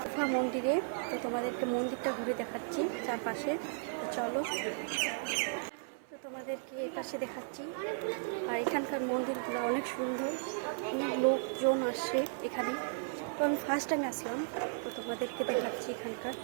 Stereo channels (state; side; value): silent; left; 54 dB below the other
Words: গুফা মন্দিরে। তো তোমাদেরকে মন্দিরটা ঘুরে দেখাচ্ছি চারপাশে। তো চলো, তো তোমাদেরকে এপাশে দেখাচ্ছি। আর এখানকার মন্দিরগুলো অনেক সুন্দর, অনেক লোকজন আসে এখানে। তো আমি ফার্স্ট টাইম আসলাম, তো তোমাদেরকে দেখাচ্ছি এখানকার